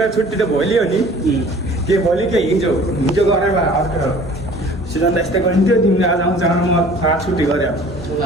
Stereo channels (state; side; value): normal; both; correlation 0.48